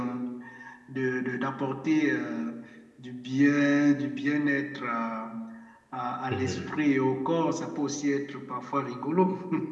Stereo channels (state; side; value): identical; both; correlation 1.00